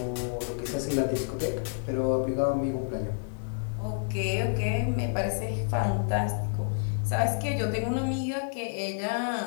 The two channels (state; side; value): silent; right; digital silence